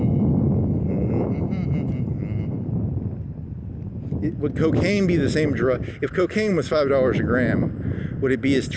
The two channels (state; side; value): identical; both; correlation 1.00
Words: Would cocaine be the same drug? If cocaine was $5 a gram, would it be as